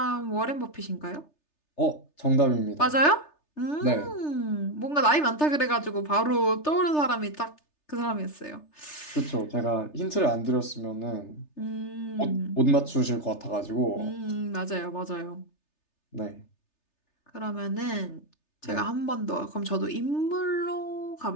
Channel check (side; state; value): right; late; 3.3 ms